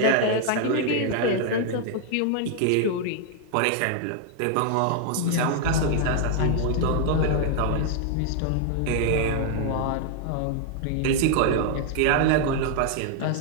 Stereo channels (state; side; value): different; both; correlation 0.00